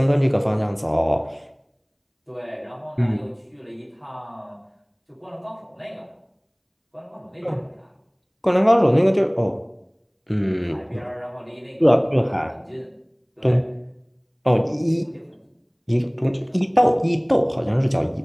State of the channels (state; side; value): identical; both; correlation 1.00